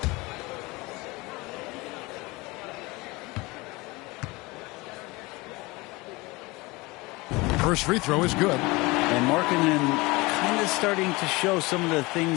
First free throw is good. And Markkanen kind of starting to show some of the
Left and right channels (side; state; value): right; quieter; 23.3 dB